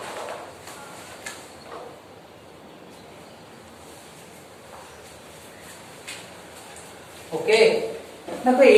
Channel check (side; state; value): both; identical; correlation 1.00